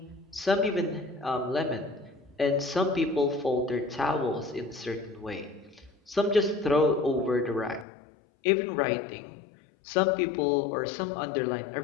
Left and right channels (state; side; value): drops out; right; at 7.9 s